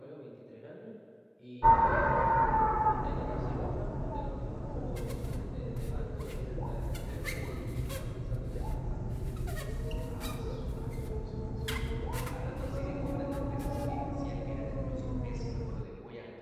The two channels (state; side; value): identical; both; correlation 1.00